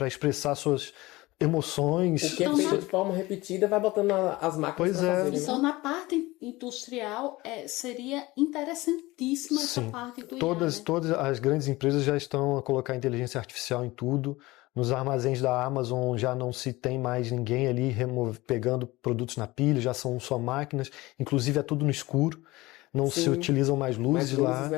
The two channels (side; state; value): right; quieter; 20.2 dB